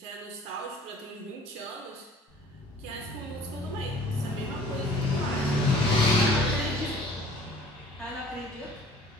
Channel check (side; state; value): both; normal; correlation 0.50